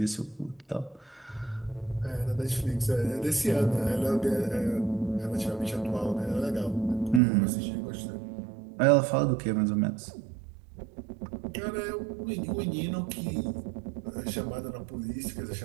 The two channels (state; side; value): drops out; left; at 7.2 s